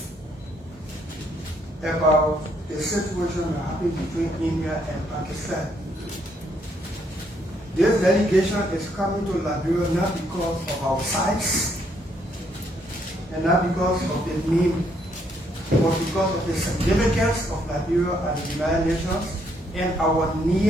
about the situation happening between India and Pakistan. This delegation is coming to Liberia not because of our size and not because of the name, but because of the significance of Liberia and the United Nations and our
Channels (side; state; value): both; normal; correlation 0.71